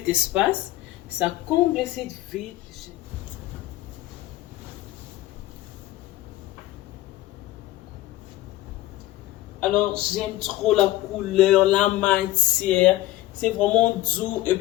espace, ça comble cette vide. Alors, j'aime trop la couleur, la matière, c'est vraiment doux. Et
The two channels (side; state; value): right; quieter; 16.1 dB